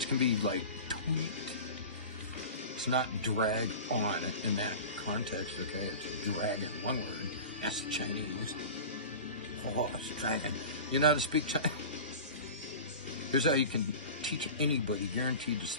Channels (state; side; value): inverted; both; correlation -0.34